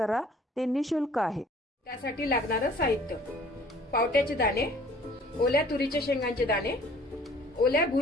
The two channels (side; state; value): both; normal; correlation 0.53